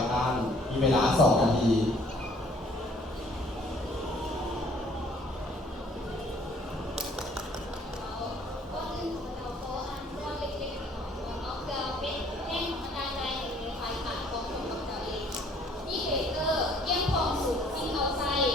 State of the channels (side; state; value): both; normal; correlation 0.59